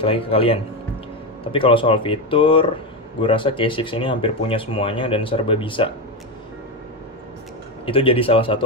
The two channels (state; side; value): normal; both; correlation 0.12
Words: lagi ke kalian. Tapi kalau soal fitur, gue rasa K6 ini hampir punya semuanya dan serba bisa. Itu jadi salah